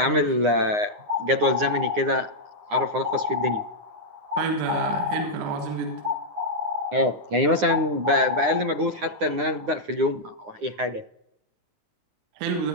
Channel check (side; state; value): left; late; 9.7 ms